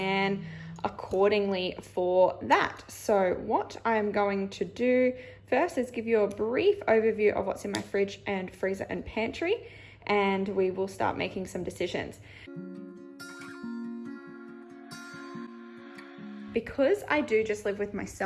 accordingly for that. So what I'm going to do first is give you a brief overview of what's in my fridge and freezer and pantry, and we will start making some decisions. Because I do just live with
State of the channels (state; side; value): identical; both; correlation 1.00